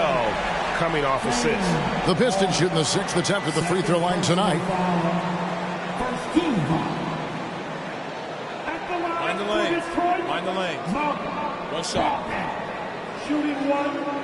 coming off assists. The Pistons shooting the 6th attempt at the free throw line tonight. Mind the lane. Mind the lane. One shot. Shooting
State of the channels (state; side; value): identical; both; correlation 1.00